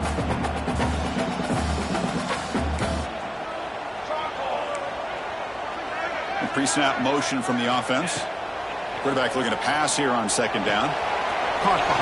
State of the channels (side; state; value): both; identical; correlation 1.00